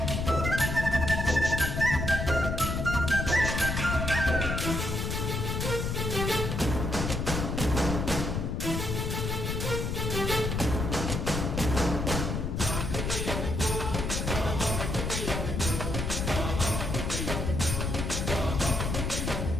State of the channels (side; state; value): left; noise; rumble, 2 dB below the sound